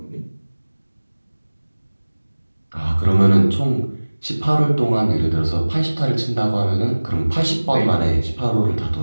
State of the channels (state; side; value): inverted; both; correlation -1.00